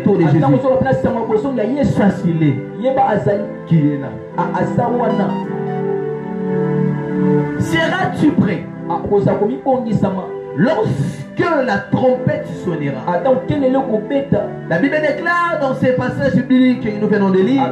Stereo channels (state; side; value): identical; both; correlation 1.00